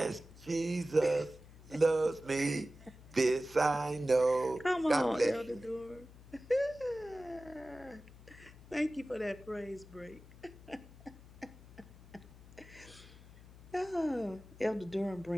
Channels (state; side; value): noise; left; hum, 20 dB below the sound